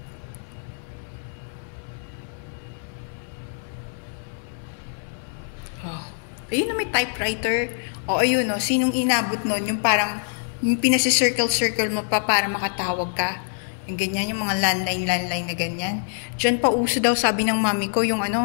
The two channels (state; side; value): silent; right; digital silence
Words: Oh. Ayun na, may typewriter. O, ayun, no, sinong inabot nun? Yung parang, yung pinasi-circle-circle mo pa para makatawag ka. Yung ganyan, yung mga landline na ganyan. Diyan pa uso daw, sabi ng mami ko, yung